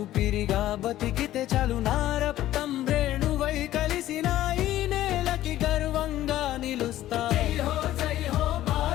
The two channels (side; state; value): right; quieter; 13.9 dB